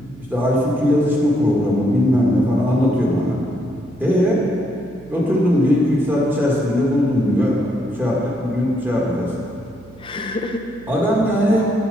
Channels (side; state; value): right; noise; hum, 24 dB below the sound